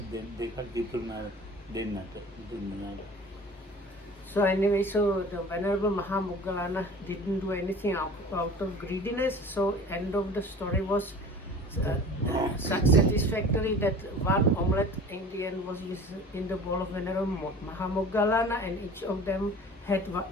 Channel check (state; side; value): normal; both; correlation 0.42